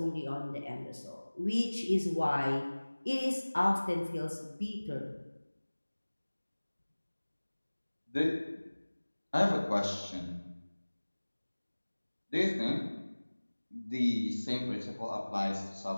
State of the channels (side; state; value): both; inverted; correlation -1.00